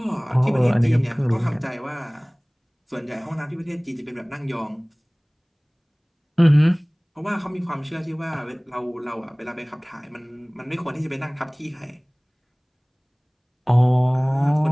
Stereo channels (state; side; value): identical; both; correlation 1.00